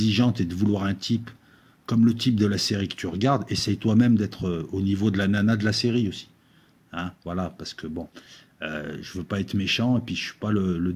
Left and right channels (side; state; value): both; identical; correlation 1.00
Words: et de vouloir un type comme le type de la série que tu regardes, essaye toi-même d'être au niveau de la nana de la série aussi. Hein, voilà, parce que bon, je veux pas être méchant, et puis je suis pas le